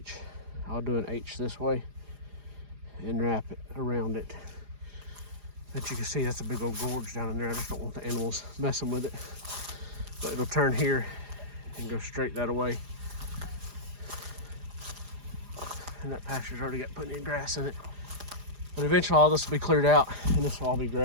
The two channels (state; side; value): late; left; 4.9 ms